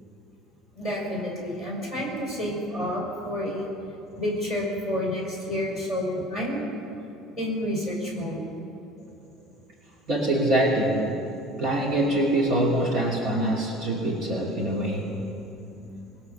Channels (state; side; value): normal; both; correlation 0.41